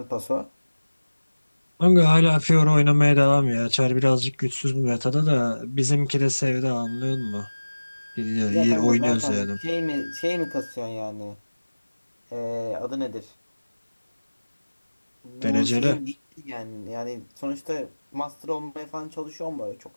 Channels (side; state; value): both; inverted; correlation -1.00